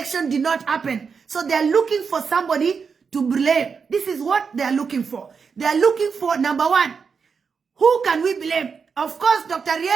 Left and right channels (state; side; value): quieter; left; 5.7 dB